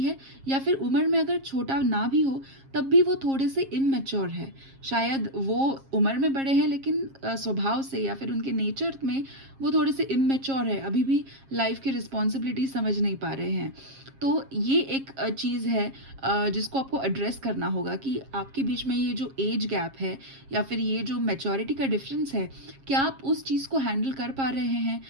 है, या फिर उम्र में अगर छोटा ना भी हो तब भी वो थोड़े से इमैच्योर है। शायद वो उम्र में बड़े हैं लेकिन स्वभाव से या फिर उनके नेचर में वो थोड़े से इमैच्योर है, अभी भी लाइफ की रिस्पॉन्सिबिलिटी समझ नहीं पा रहे हैं। तो ये एक चीज़ है जिसको आपको एड्रेस करना होगा कि आपके बीच में ये जो एज गैप है या फिर ये जो मैच्योरिटी का डिफरेंस है, क्या आप उस चीज़ को हैंडल कर पा रहे हैं,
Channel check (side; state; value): left; late; 7.4 ms